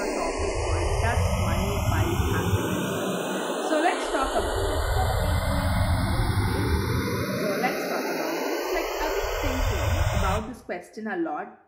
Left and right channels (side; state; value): both; identical; correlation 1.00